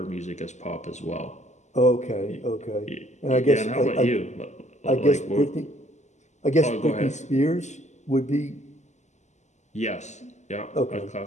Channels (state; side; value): late; right; 0.34 ms